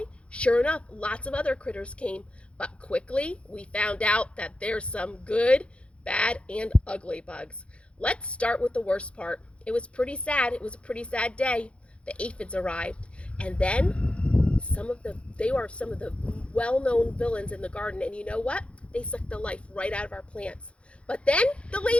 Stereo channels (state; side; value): late; right; 0.060 ms